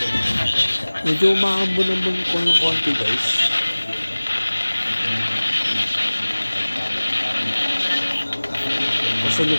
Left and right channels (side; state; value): both; inverted; correlation -1.00